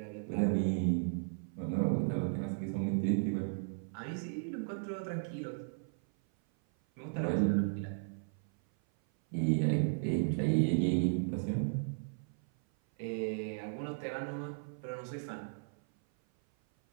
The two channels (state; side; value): silent; left; 54 dB below the other